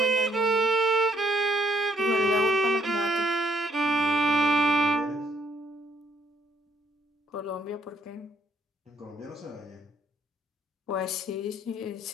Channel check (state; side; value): normal; both; correlation 0.69